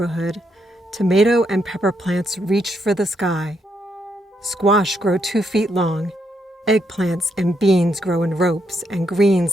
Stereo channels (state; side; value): normal; both; correlation 0.78